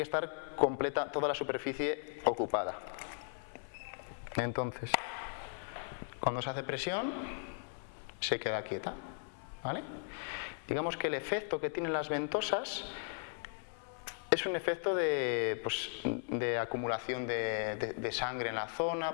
estar completa, toda la superficie ocupada. Entonces, cuando se hace presión, se queda quieta, ¿vale? Digamos que el efecto que tienen las ventosas es un efecto de acumulación de sangre en la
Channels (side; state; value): right; silent; 53 dB below the other